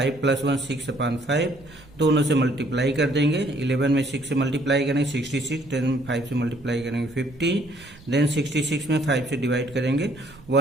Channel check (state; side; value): noise; right; rumble, 23 dB below the sound